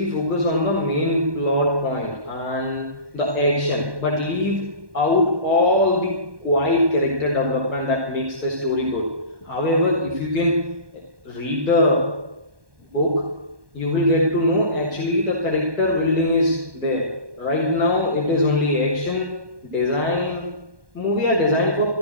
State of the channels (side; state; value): left; late; 1.2 ms